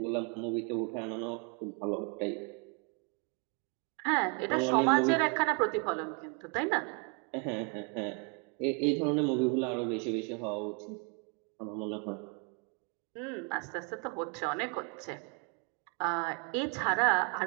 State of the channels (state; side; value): quieter; left; 35.9 dB